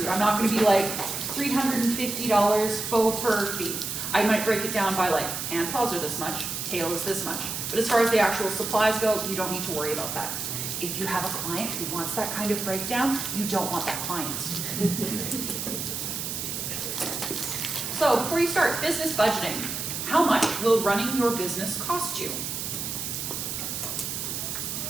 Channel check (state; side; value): noise; right; hiss, 4 dB below the sound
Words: I'm not going to be like $350 faux fur fee. I might break it down by like hand paws are this much, tail is this much. But as far as the actual supplies go, you don't need to worry about that. If you have a client who wants that kind of breakdown, you don't want that client. So before you start business budgeting, how much will running your business cost you?